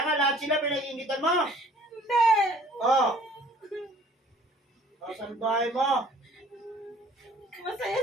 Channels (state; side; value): normal; both; correlation 0.54